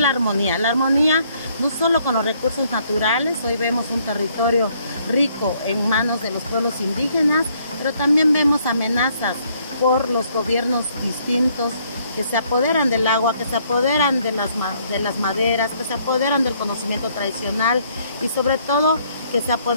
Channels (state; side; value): inverted; both; correlation -0.67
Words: armonía no solo con los recursos naturales. Hoy vemos un territorio rico en manos de los pueblos indígenas, pero también vemos amenazas por los gobiernos distintos que se apoderan del agua, que se apoderan de las maderas, que se apoderan del conocimiento tradicional y sobre todo que se